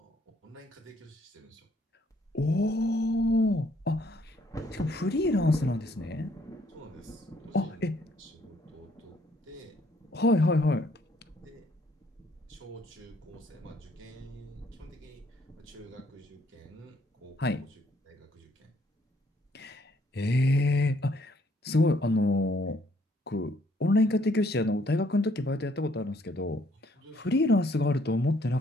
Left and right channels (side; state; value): both; normal; correlation 0.66